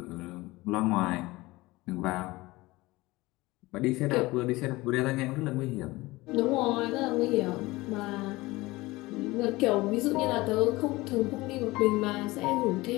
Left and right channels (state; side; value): quieter; right; 20.5 dB